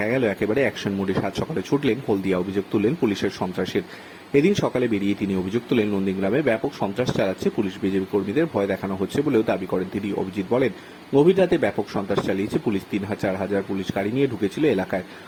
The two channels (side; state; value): both; identical; correlation 1.00